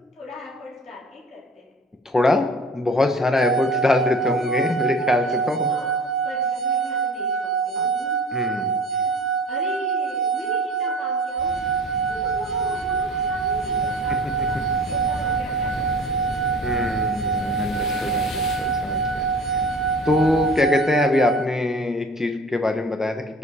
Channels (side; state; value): both; normal; correlation 0.42